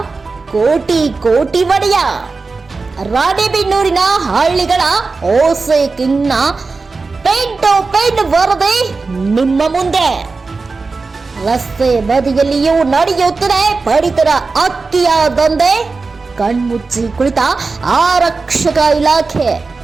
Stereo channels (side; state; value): left; quieter; 4.1 dB